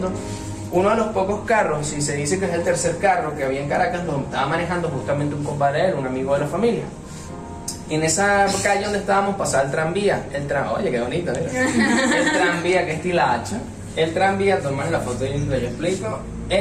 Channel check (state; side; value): identical; both; correlation 1.00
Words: Uno de los pocos carros, y se dice que es el tercer carro que había en Caracas, lo estaba manejando justamente un compadre de él, un amigo de la familia. En esa calle donde estábamos pasaba el tranvía, oye, qué bonito, mira. El tranvía, que es Tilacha. El tranvía, toman la foto y yo explico.